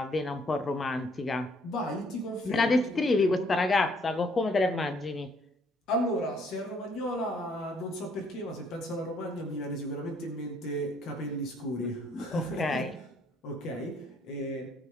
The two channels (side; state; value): both; normal; correlation 0.65